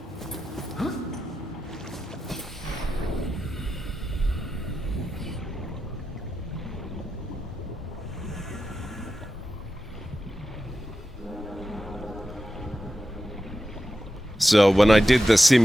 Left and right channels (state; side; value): normal; both; correlation 0.90